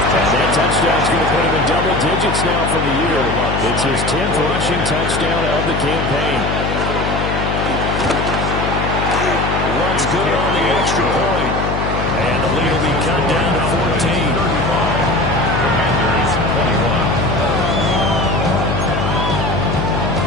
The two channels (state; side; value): noise; left; hum, 2 dB below the sound